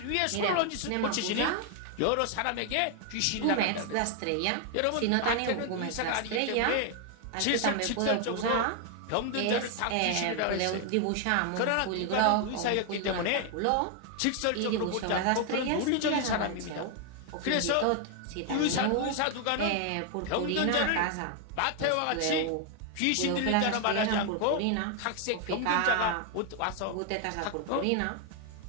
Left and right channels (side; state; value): both; different; correlation 0.00